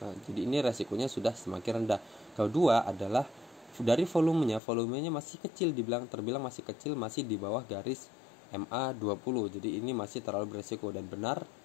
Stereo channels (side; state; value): right; drops out; at 4.6 s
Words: Nah, jadi ini resikonya sudah semakin rendah. Kedua adalah dari volumenya masih kecil, terbilang masih kecil, masih di bawah garis MA20. Jadi ini masih terlalu beresiko, dan benar